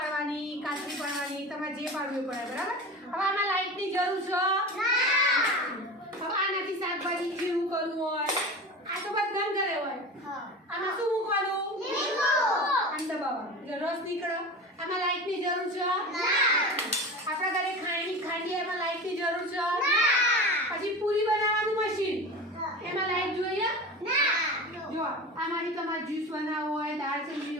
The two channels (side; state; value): both; normal; correlation 0.31